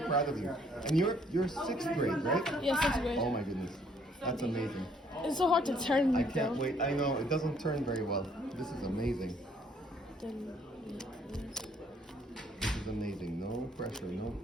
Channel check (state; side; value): normal; both; correlation 0.64